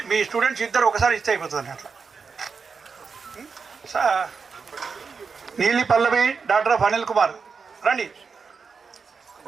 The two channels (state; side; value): quieter; left; 5.3 dB